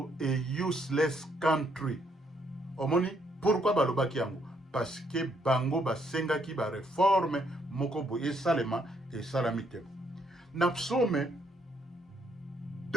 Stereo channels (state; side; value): normal; both; correlation 0.71